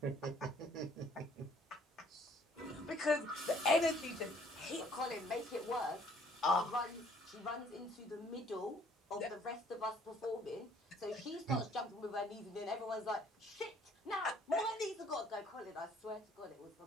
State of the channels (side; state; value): both; normal; correlation 0.60